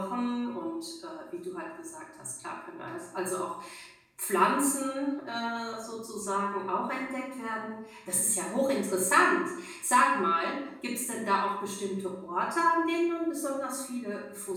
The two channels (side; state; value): both; identical; correlation 1.00